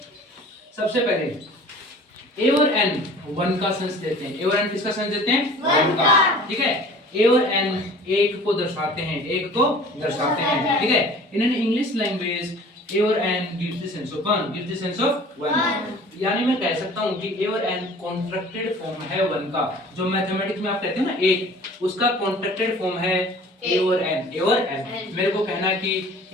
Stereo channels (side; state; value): both; normal; correlation 0.46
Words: सबसे पहले ए और एन वन का सेंस देते हैं। ए और एन किसका सेंस देते हैं? वन का। ठीक है, ए और एन एक को दर्शाते हैं, एक को दर्शाते हैं। ठीक है, in an English language a और an gives the sense of one, gives the sense of one. यानी मैं कह सकता हूं कि ए और एन कॉन्ट्रैक्टेड फॉर्म है वन का। जो मैथमेटिक्स में आप कहते हो ना एक, उसका कॉन्ट्रैक्टेड फॉर्म है ए और एन। ए और एन मेरे को कहना है कि